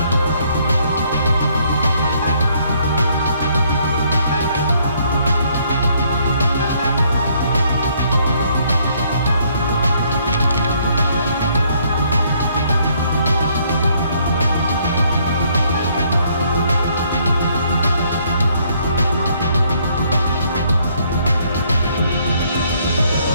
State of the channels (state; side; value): inverted; both; correlation -0.67